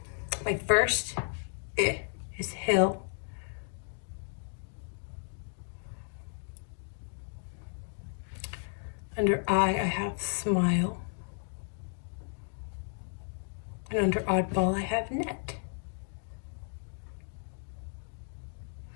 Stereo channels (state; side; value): silent; right; digital silence